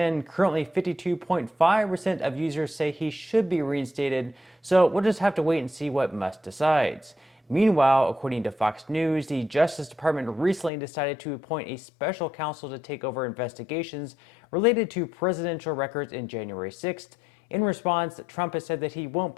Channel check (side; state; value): right; drops out; at 10.7 s